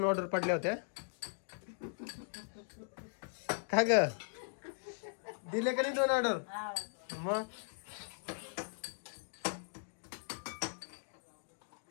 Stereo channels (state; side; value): silent; right; digital silence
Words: ऑर्डर पडल्या होत्या. का ग दिले का नाही 2 ऑर्डर? मग